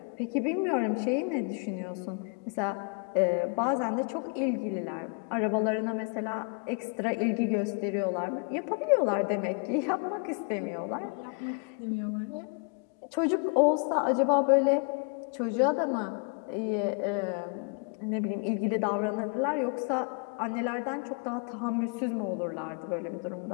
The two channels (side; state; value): right; quieter; 36.5 dB